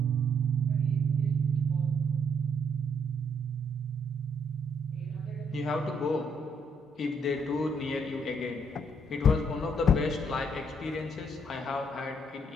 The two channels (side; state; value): both; normal; correlation 0.70